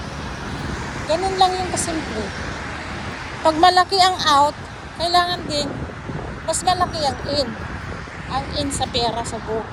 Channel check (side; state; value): both; identical; correlation 1.00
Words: Ganun lang yung kasimple. Pag malaki ang out, kailangan din, mas malaki ang in. Ang in sa pera,